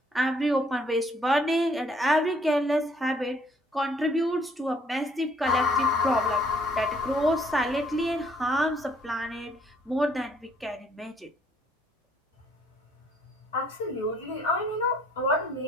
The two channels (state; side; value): normal; both; correlation 0.64